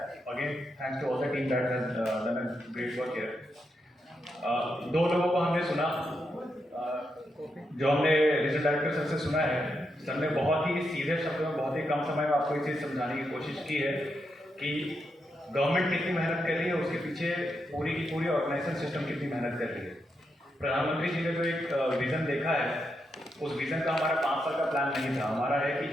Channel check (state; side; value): normal; both; correlation 0.83